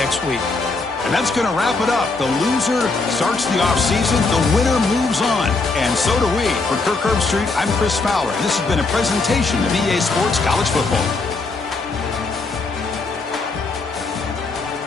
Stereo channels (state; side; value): quieter; right; 3.7 dB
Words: week. And that's going to wrap it up. The loser starts the offseason. The winner moves on. And so do we. For Kirk Herbstreit, I'm Chris Fowler. And this has been a presentation of EA Sports College Football.